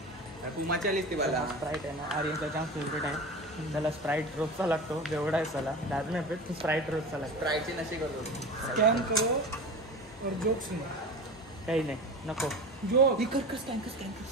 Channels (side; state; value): both; normal; correlation 0.31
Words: कुमाच्या लिस्टी मला स्प्राईट आहे ना. आर्यनचा जाम फेवरेट आहे. त्याला स्प्राईट रोजचा लागतो. बेवडा आहे त्याला. दाद नाही पेट स्प्राईट रोजचा लागतो. स्प्राईटचे नशे करतो. स्कॅन करो और जोक सुनो. काही नाही नको. जोक स्कॅन कर.